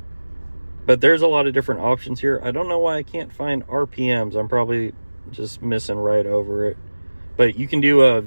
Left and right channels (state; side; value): inverted; both; correlation -1.00